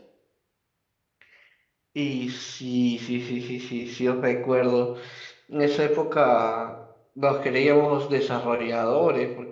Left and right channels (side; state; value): both; identical; correlation 1.00